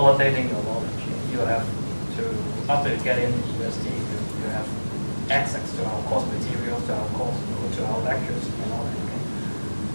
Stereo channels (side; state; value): both; inverted; correlation -1.00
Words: your knowledge. You have to, after you get in university, you have access to our course materials, to our course, to our lectures, and all that. Okay?